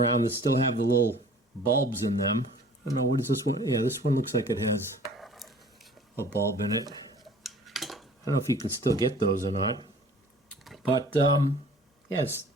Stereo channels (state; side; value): normal; both; correlation 0.49